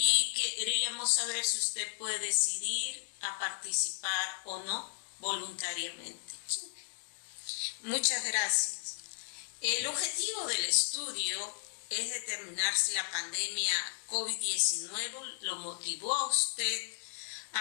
queríamos saber si usted puede decidir a participar o no voluntariamente. Muchas gracias. El objetivo del estudio es determinar si la pandemia COVID-19 lo motivó a usted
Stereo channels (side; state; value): right; silent; digital silence